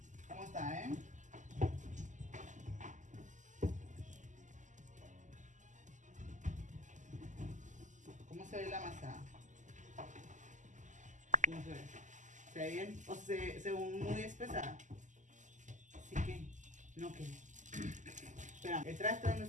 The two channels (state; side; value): late; left; 0.36 ms